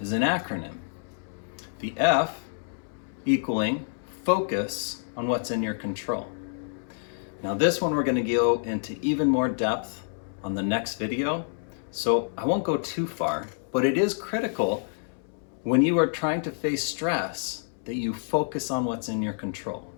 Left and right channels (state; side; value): silent; right; 59 dB below the other